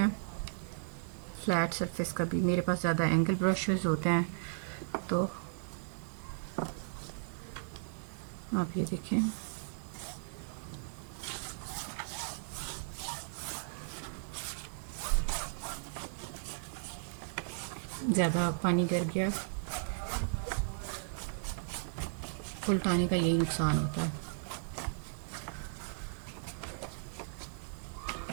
फ्लैट सरफेस का भी। मेरे पास ज़्यादा एंगल ब्रशेस होते हैं, तो आप ये देखें। ज़्यादा पानी गिर गया, उल्टाने का यही नुकसान होता है।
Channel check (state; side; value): silent; left; digital silence